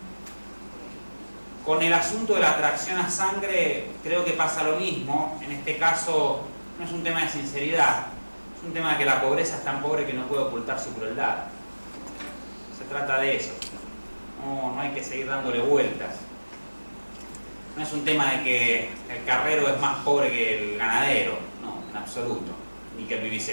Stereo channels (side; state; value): both; inverted; correlation -1.00